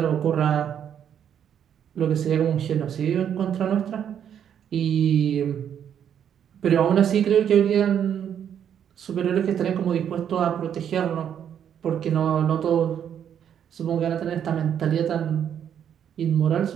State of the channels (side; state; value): left; quieter; 9.0 dB